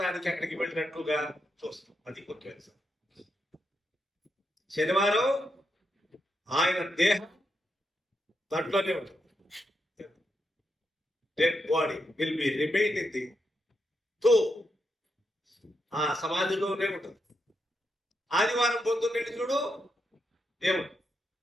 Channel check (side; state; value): both; normal; correlation 0.83